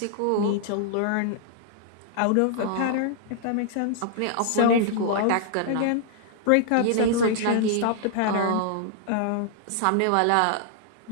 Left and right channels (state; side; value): different; both; correlation 0.00